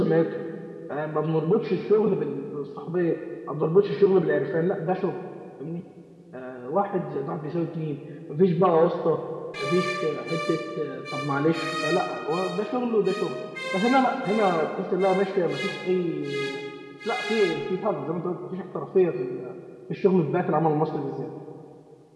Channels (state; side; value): identical; both; correlation 1.00